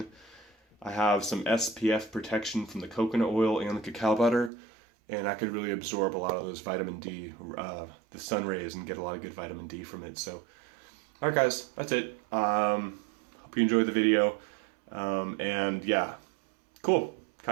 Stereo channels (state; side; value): drops out; left; at 4.5 s